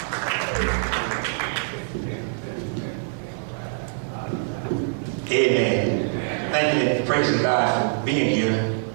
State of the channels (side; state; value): left; silent; digital silence